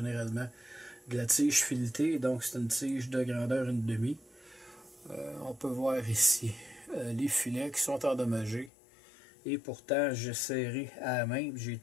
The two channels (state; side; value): drops out; right; at 8.7 s